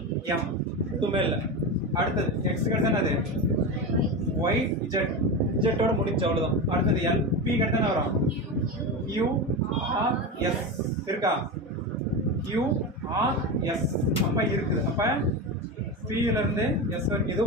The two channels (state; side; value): normal; both; correlation 0.20